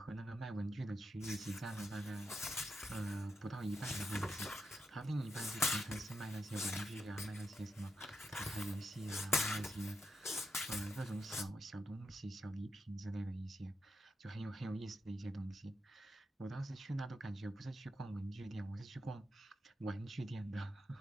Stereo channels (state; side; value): normal; both; correlation 0.85